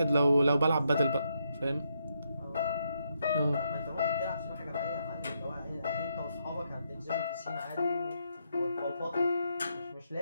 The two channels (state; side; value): inverted; both; correlation -0.79